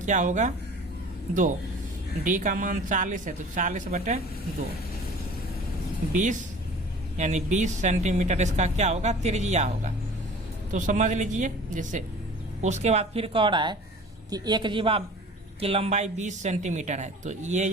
होगा 2। d का मान 40 है तो 40/2 20 यानी 20 सेंटीमीटर इसका क्या होगा त्रिज्या होगा। तो समझ लीजिए। जैसे उसके बाद फिर कह रहा है कि एक जीवा की लंबाई 20 सेंटीमीटर है। तो ये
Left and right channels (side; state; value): both; normal; correlation 0.44